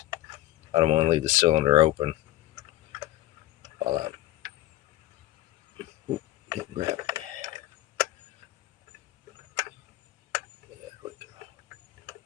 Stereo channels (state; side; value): quieter; right; 15.3 dB